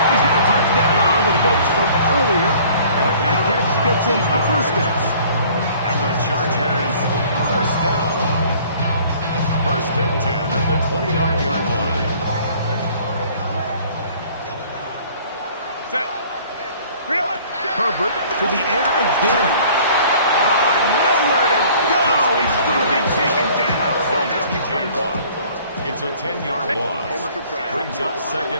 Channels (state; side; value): inverted; both; correlation -0.53